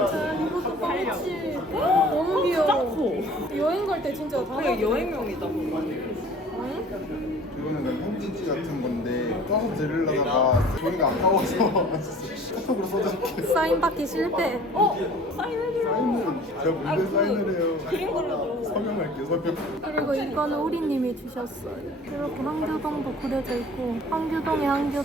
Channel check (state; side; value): normal; both; correlation 0.48